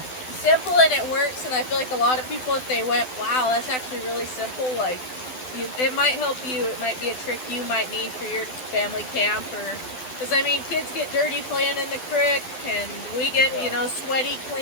simple, and it works. And I feel like a lot of people, if they went, wow, that's actually really simple, like, it might help you. It might be a trick you might need for your family camp, or because I mean, kids get dirty playing in the creek, and we get you know, sweaty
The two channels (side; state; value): right; late; 12 ms